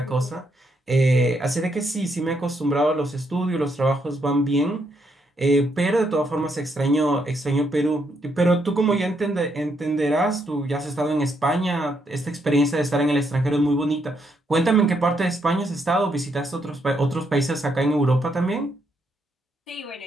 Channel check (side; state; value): both; normal; correlation 0.76